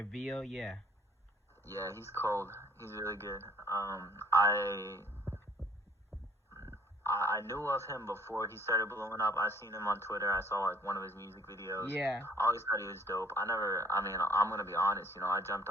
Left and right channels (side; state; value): both; normal; correlation 0.58